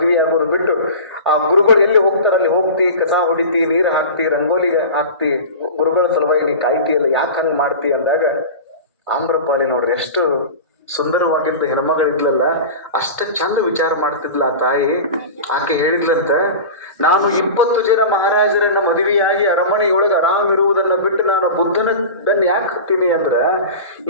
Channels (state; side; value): inverted; both; correlation -0.32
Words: ಬಿಟ್ಟು ಆ ಗುರುಗಳು ಎಲ್ಲಿ ಹೋಗ್ತಾರ ಅಲ್ಲಿ ಹೋಗ್ತಿ, ಕಸ ಹೊಡಿತಿ, ನೀರು ಹಾಕ್ತಿ, ರಂಗೋಲಿಗೆ ಹಾಕ್ತಿ, ಗುರುಗಳ ಸಲುವಾಗಿ ನೀ ಕಾಯ್ತಿಯಲ್ಲ, ಯಾಕೆ ಹಂಗೆ ಮಾಡ್ತಿ ಅಂದಾಗ ಆಮ್ರಪಾಲಿ ನೋಡ್ರಿ ಎಷ್ಟು ಸುಂದರವಾಗಿದ್ದ ಹೆಣ್ಮಗಳಿದ್ಲಲ್ಲ, ಅಷ್ಟ ಚಂದ ವಿಚಾರ ಮಾಡ್ತಿದ್ಲ ಆ ತಾಯಿ. ಆಕೆ ಹೇಳಿದ್ಲಂತ, ನಾನು 20 ಜನ ಮಹಾರಾಜರನ್ನ ಮದುವೆಯಾಗಿ ಅರಮನೆಯೊಳಗೆ ಆರಾಮ್ ಇರುವುದನ್ನ ಬಿಟ್ಟು ನಾನು ಬುದ್ಧನ ಬೆನ್ನು ಯಾಕೆ ಹತ್ತೀನಿ ಅಂದ್ರ,